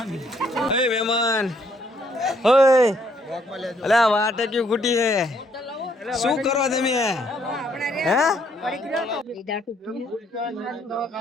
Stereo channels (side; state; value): both; normal; correlation 0.68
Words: ઓય મહેમાન ઓય અલા વાટે ક્યું ખૂટી હે શું કરો તમે હે